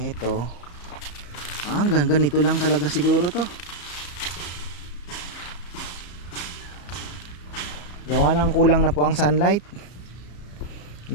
Hanggang ganito lang talaga siguro to. Gawa ng kulang na po ang sunlight.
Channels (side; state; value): right; late; 34 ms